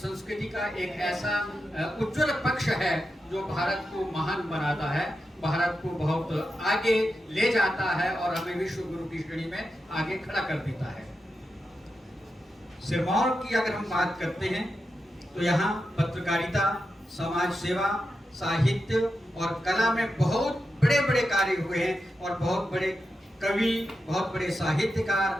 का एक ऐसा उज्जवल पक्ष है जो भारत को महान बनाता है, भारत को बहुत आगे ले जाता है और हमें विश्व गुरु की श्रेणी में आगे खड़ा कर देता है। सिरमौर की अगर हम बात करते हैं तो यहाँ पत्रकारिता, समाज सेवा, साहित्य और कला में बहुत बड़े बड़े कार्य हुए हैं और बहुत बड़े कवि, बहुत बड़े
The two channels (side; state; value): both; normal; correlation 0.89